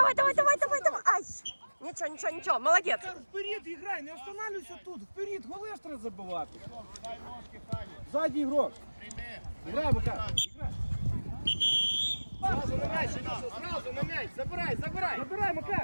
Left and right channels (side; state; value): both; inverted; correlation -1.00